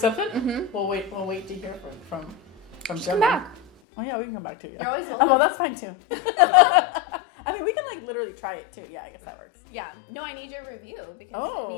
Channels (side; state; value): right; drops out; at 3.7 s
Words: Mm-hmm. We'll wait to hear from Come Gemma. back. Oh yeah, we can come back too. Yeah. You're always welcome. Oh, well, that's fine too. I mean, we can like literally try it too. Yeah, I guess that works. Yeah. No, I need your review because it